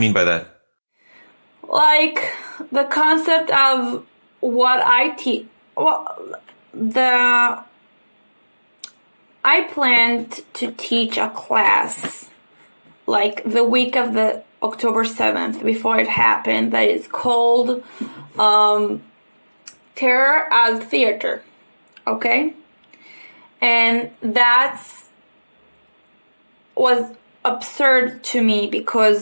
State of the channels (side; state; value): both; inverted; correlation -1.00